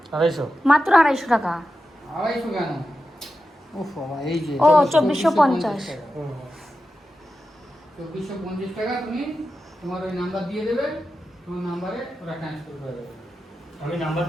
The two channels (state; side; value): normal; both; correlation 0.91